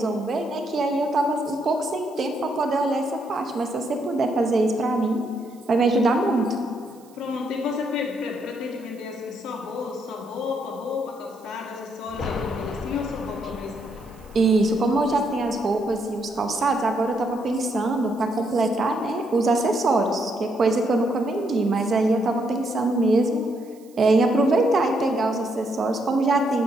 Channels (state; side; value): noise; right; hiss, 29 dB below the sound